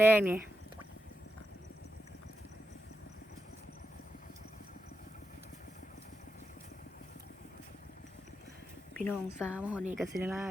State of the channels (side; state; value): both; normal; correlation 0.87